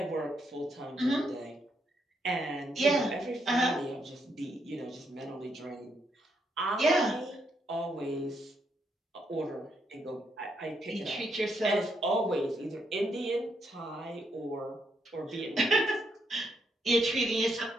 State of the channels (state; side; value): normal; both; correlation 0.77